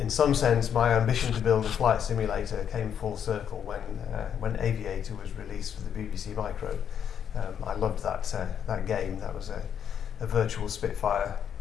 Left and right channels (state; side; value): quieter; right; 8.5 dB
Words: some sense, my ambition to build a flight simulator came full circle when Aviator was released for the BBC Micro. I loved that game. That was a virtual Spitfire